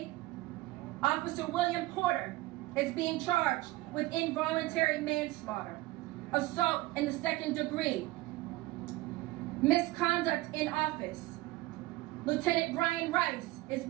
Officer William Porter is being charged with involuntary manslaughter. assault in the second degree, misconduct in office. Lieutenant Brian Rice is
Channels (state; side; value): quieter; left; 19.0 dB